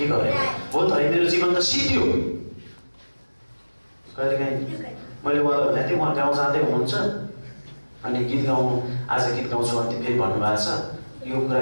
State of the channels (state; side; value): inverted; both; correlation -1.00